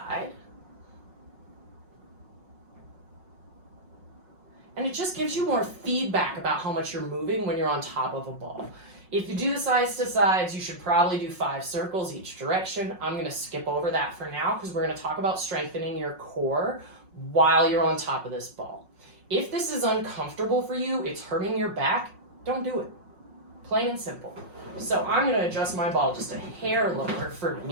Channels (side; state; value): left; late; 5.5 ms